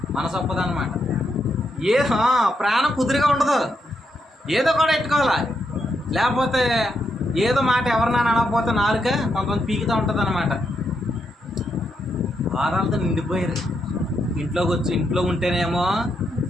మనసు ఒప్పదన్నమాట. ప్రాణం కుదురుగా ఉండదు, ఏదో కూడా పెట్టుకోవాలి. లేకపోతే ఏదో మాట ఎవరినైనా అనకపోతే నాలుక కొంతమంది పీకుతూ ఉంటుంది అన్నమాట. వాదాలతో నిండిపోయారు. ఇంట్లో ఉంటేనేమో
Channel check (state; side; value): normal; both; correlation 0.81